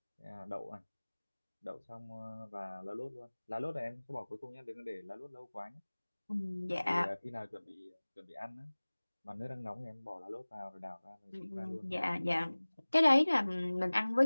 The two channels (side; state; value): both; inverted; correlation -1.00